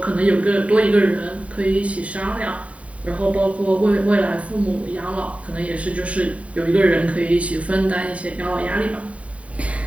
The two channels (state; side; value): late; left; 0.066 ms